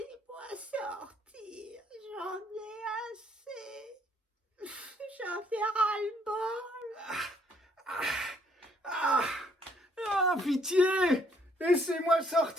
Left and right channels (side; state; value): both; normal; correlation 0.66